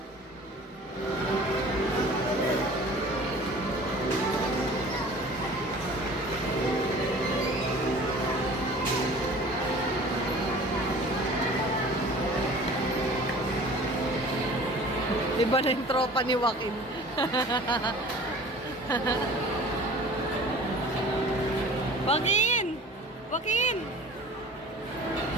Iba na yung tropa ni Joaquin. Joaquin! Joaquin!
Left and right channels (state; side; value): normal; both; correlation 0.44